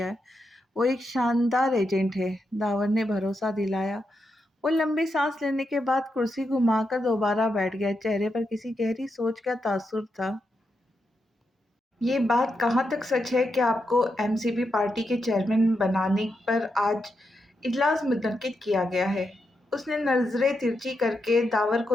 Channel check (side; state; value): both; normal; correlation 0.85